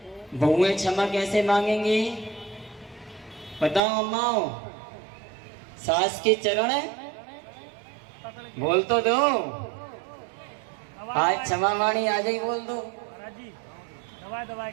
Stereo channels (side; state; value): left; drops out; at 3.8 s